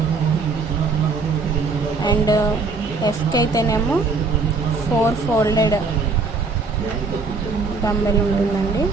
అండ్ ఎఫ్కి అయితేనేమో 4 ఫోల్డెడ్ డంబెల్ ఉంటుందండి.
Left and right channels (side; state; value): left; quieter; 4.2 dB